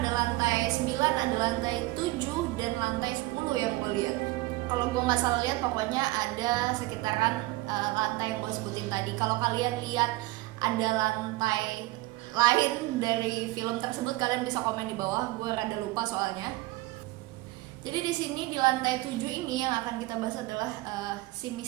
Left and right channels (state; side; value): quieter; left; 19.9 dB